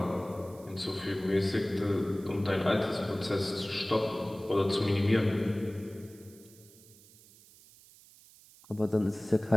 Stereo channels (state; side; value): noise; right; hiss, 24 dB below the sound